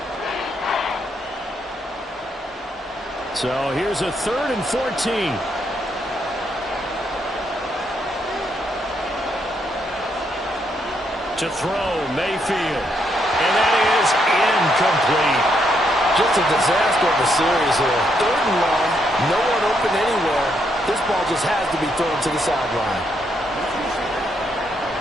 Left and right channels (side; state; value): both; normal; correlation 0.76